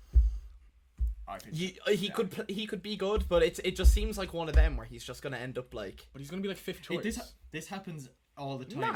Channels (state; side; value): identical; both; correlation 1.00